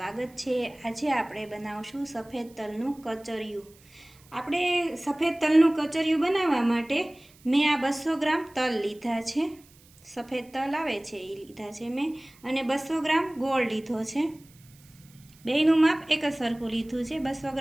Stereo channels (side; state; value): right; noise; hiss, 27 dB below the sound